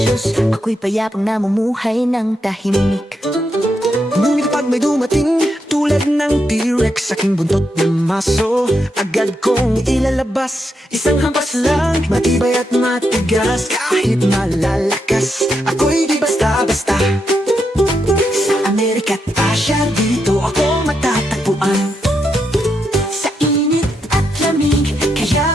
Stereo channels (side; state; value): both; normal; correlation 0.82